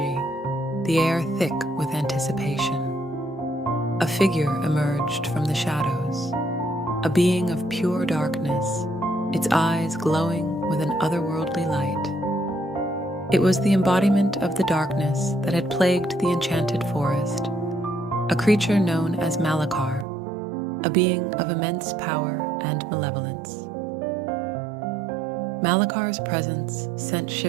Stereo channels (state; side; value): drops out; left; at 20.1 s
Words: the air thick with anticipation. A figure emerged from the shadows, a being of pure darkness, its eyes glowing with an otherworldly light. It was the embodiment of the darkness that had plagued the enchanted forest, a creature known as Malakar, a being of immense power and malevolence. Malakar's presence sent